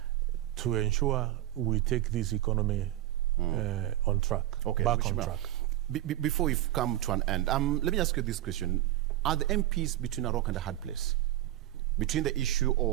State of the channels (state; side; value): quieter; left; 14.3 dB